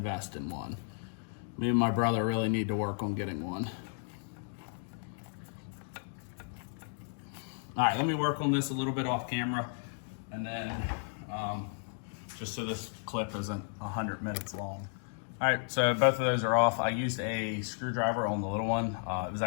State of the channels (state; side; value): silent; right; 55 dB below the other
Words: in one. Me and my brother really need to work on getting one. All right, let me work on this a little bit off camera, and then just so this clip isn't 100 minutes long. All right, so both of those are off. I used a screwdriver on the little one. It was